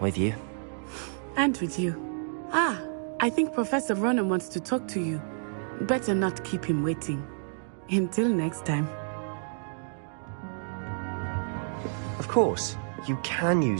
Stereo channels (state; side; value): silent; left; digital silence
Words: you. And with you. I think Professor Ronan wants to talk to you. Better not keep him waiting. Until next time. Of course, you can